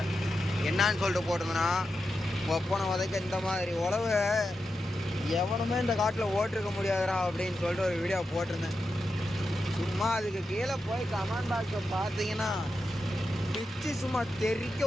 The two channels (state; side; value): normal; both; correlation 0.89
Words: என்னான்னு சொல்லிட்டு போட்டிருந்தேன்னா, ஒப்பனை உதைக்க இந்த மாதிரி உழவு எவனுமே இந்த காட்டில் ஓட்டிருக்க முடியாதுடா அப்படின்னு சொல்லிட்டு ஒரு வீடியோ போட்டிருந்தேன். சும்மா அதுக்கு கீழே போய் கமெண்ட் பாக்ஸை பார்த்தீங்கன்னா பிச்சு சும்மா தெறிக்க